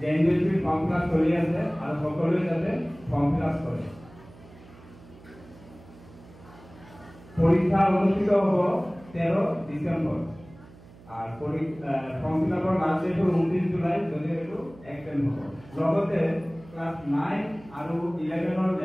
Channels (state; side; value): noise; right; hum, 22 dB below the sound